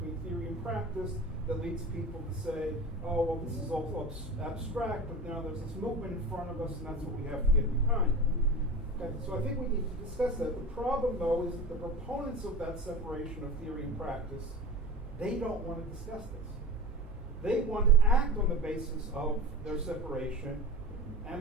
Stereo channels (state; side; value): normal; both; correlation 0.32